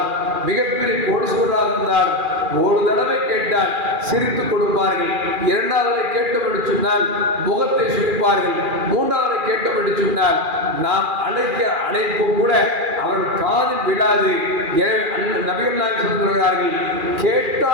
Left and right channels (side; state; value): left; late; 2.4 ms